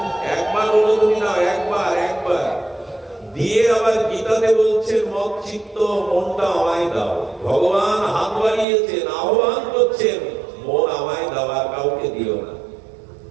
একবার হলো তুমি নাও, একবার দিয়ে আবার গীতাতে বলছেন মত চিত্ত মনটা আমায় দাও। ভগবান হাত বাড়িয়েছেন, আহ্বান করছেন, মন আমায় দাও, আর কাউকে দিও না।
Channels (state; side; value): drops out; left; at 8.7 s